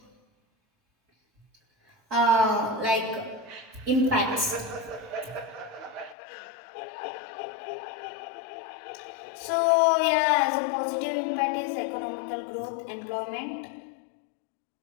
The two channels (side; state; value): right; drops out; at 6.2 s